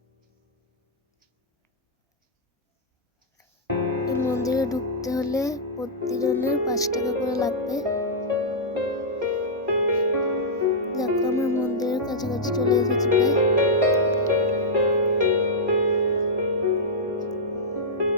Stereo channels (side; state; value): both; normal; correlation -0.09